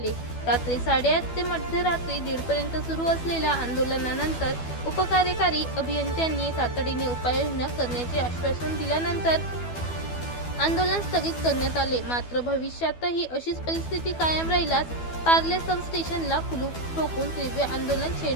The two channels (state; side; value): late; right; 12 ms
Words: रात्री 8:30 ते मध्यरात्री 1:30 पर्यंत सुरू असलेल्या आंदोलनानंतर उपकार्यकारी अभियंत्यांनी तातडीने उपाययोजना करण्याचे आश्वासन दिल्यानंतर आंदोलन स्थगित करण्यात आले। मात्र भविष्यातही अशीच परिस्थिती कायम राहिल्यास पार्ले सबस्टेशनला कुलूप ठोकून तीव्र आंदोलन